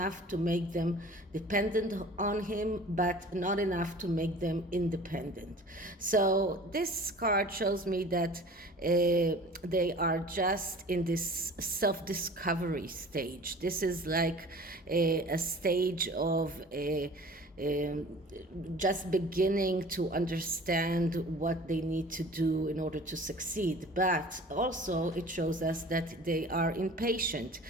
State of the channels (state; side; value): normal; both; correlation 0.44